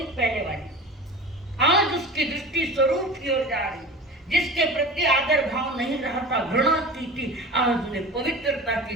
पहले वाली, आज उसकी दृष्टि स्वरूप की ओर जा रही। जिसके प्रति आदर भाव नहीं रहा था, घृणा की थी, आज उन्हें पवित्रता की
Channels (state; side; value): normal; both; correlation 0.34